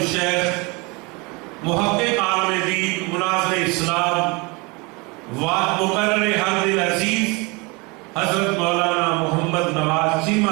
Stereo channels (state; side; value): quieter; left; 27.6 dB